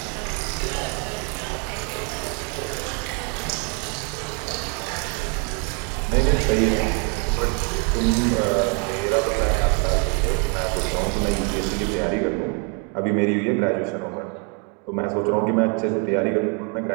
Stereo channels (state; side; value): quieter; left; 36.8 dB